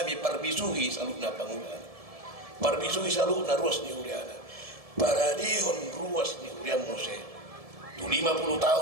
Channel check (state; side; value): late; left; 1.7 ms